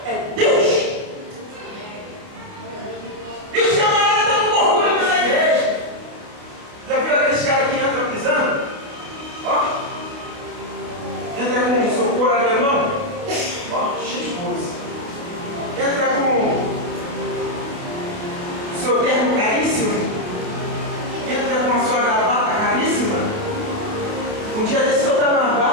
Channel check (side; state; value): left; late; 29 ms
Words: é Deus. E os camaradas estão com orgulho dessa igreja. Já viu aqueles caras que entram pisando? Ó, entra com um socorro alemão, ó, cheio de coisa. Entra com seu terno caríssimo, entra com a sua gravata caríssima. Um dia desse eu estava na